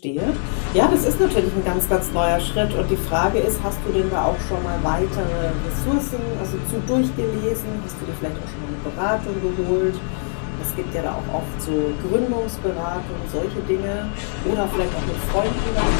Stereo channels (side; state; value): right; silent; 57 dB below the other